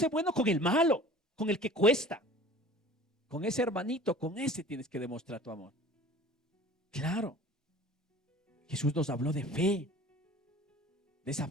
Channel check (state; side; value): normal; both; correlation 0.45